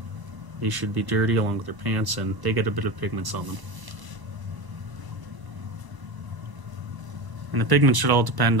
they should be dirty along with their pants, and they get a bit of pigments on them. And the pigments should all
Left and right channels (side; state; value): left; late; 1.0 ms